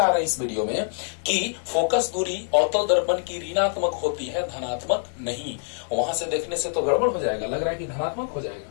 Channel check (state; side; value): silent; right; 62 dB below the other